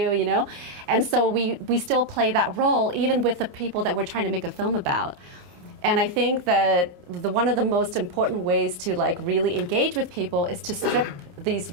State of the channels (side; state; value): left; late; 28 ms